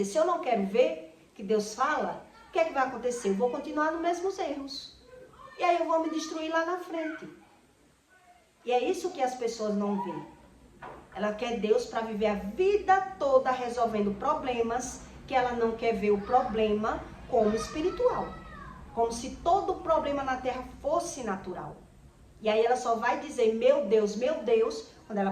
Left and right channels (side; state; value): both; identical; correlation 1.00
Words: se eu não quero ver que Deus fala, o que é que vai acontecer? Eu vou continuar nos mesmos erros. E aí eu vou me destruir lá na frente. E é isso que as pessoas não veem. Ela quer Deus para viver a vida toda resolvendo problemas, que ela não quer ver o problema como espiritual. Como se todo problema na terra fosse natural. E aí ela só vai dizer, meu Deus, quando